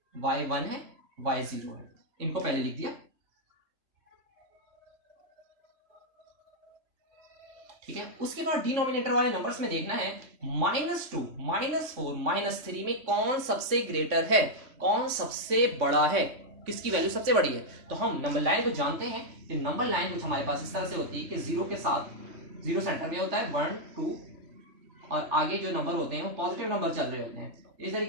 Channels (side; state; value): left; late; 3.6 ms